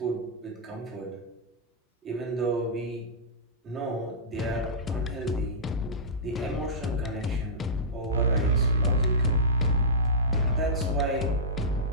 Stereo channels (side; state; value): both; normal; correlation -0.16